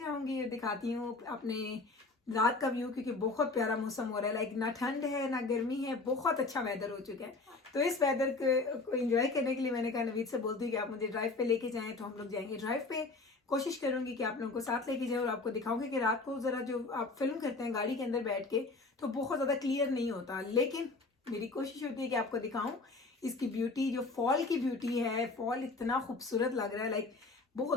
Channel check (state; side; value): quieter; right; 3.6 dB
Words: और दिखाती हूँ अपने रात का व्यू, क्योंकि बहुत प्यारा मौसम हो रहा है। लाइक ना ठंड है ना गर्मी है, बहुत अच्छा वेदर हो चुका है। तो इस वेदर को एंजॉय करने के लिए मैंने कहा नवीद से बोलती हूँ कि आप मुझे ड्राइव पे लेके जाएं, तो हम लोग जाएंगे ड्राइव पे। कोशिश करूंगी कि आप लोगों को साथ लेके जाए, और आपको दिखाऊंगी कि रात को जरा जो आप फिल्म करते हैं गाड़ी के अंदर बैठ के, तो बहुत ज़्यादा क्लियर नहीं होता, लेकिन मेरी कोशिश होती है कि आपको दिखाऊं इसकी ब्यूटी, जो फॉल की ब्यूटी है। फॉल इतना खूबसूरत लग रहा है, लाइक